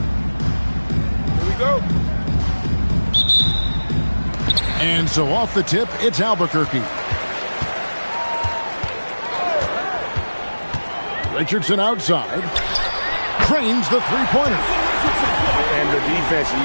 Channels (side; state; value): both; inverted; correlation -1.00